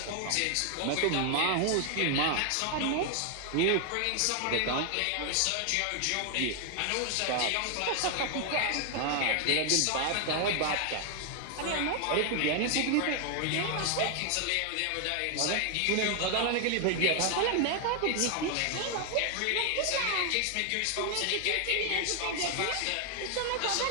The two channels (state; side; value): different; both; correlation 0.00